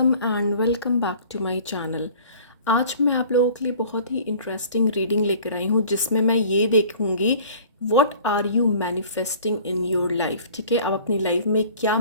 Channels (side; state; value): both; inverted; correlation -0.48